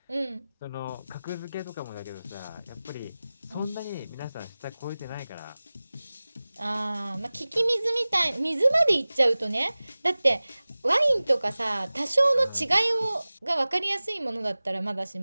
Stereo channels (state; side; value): inverted; both; correlation -0.98